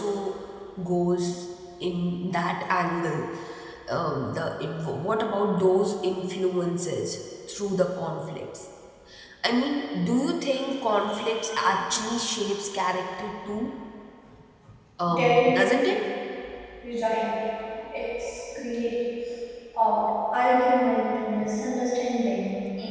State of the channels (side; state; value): both; identical; correlation 1.00